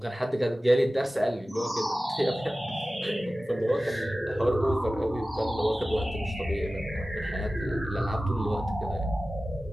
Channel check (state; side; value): normal; both; correlation 0.96